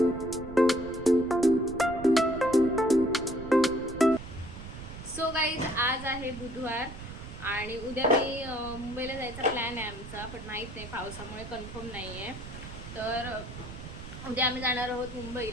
सो गाईज आज आहे बुधवार आणि उद्या मी मुंबईला जायचा प्लॅन आहे आमचा, पण माहीत नाही पावसामुळे कन्फर्म नाही आहे. तर उद्या आम्ही जाणार आहोत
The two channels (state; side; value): noise; right; rumble, 12 dB below the sound